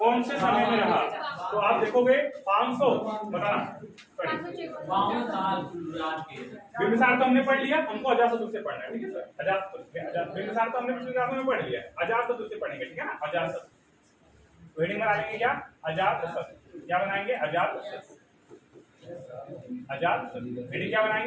से समय में रहा? तो आप देखोगे 500, बताना। बिंबिसार तो हमने पढ़ लिया, हमको अजातशत्रु से पढ़ना है, ठीक है सर? अजातशत्रु, बिंबिसार तो हमने पिछले क्लास में पढ़ लिया, अजातशत्रु से पढ़ेंगे, ठीक है ना? अजातशत्रु हेडिंग बना लेंगे क्या? अजातशत्रु। क्या बनाएंगे? अजातशत्रु। अजातशत्रु हेडिंग क्या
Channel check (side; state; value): both; identical; correlation 1.00